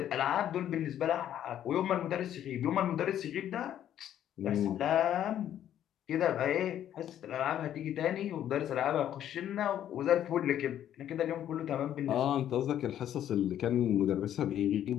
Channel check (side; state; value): right; quieter; 10.9 dB